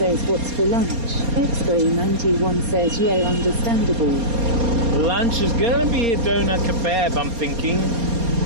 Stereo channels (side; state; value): left; late; 4.3 ms